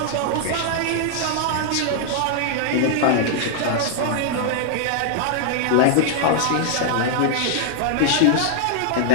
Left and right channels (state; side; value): different; both; correlation -0.01